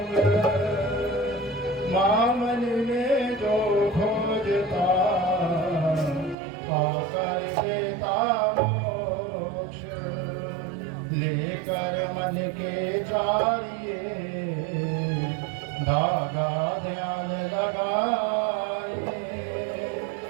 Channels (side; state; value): left; drops out; at 6.4 s